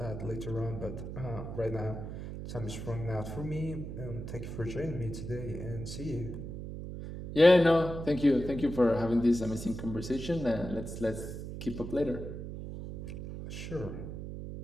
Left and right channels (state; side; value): noise; right; hum, 8 dB below the sound